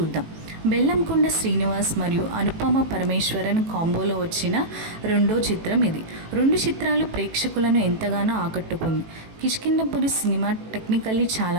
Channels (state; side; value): late; left; 18 ms